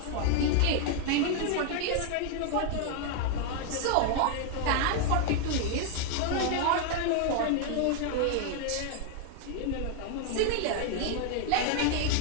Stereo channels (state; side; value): different; both; correlation 0.00